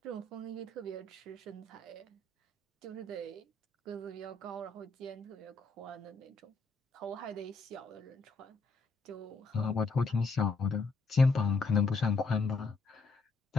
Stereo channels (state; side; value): quieter; right; 3.7 dB